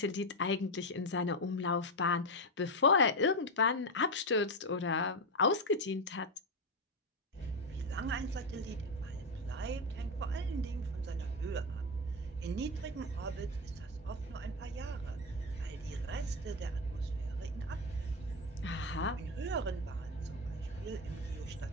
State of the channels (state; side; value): normal; both; correlation 0.10